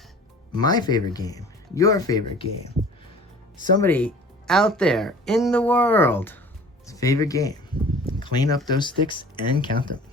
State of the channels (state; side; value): normal; both; correlation 0.45